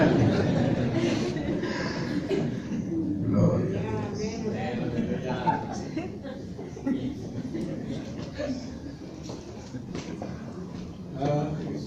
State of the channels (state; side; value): identical; both; correlation 1.00